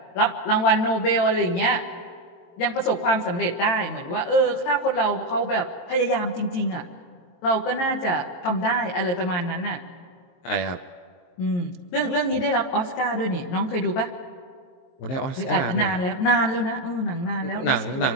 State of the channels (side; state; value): right; late; 22 ms